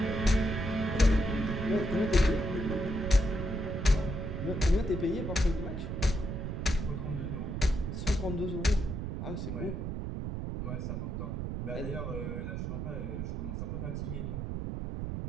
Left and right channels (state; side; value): noise; right; rumble, 4 dB below the sound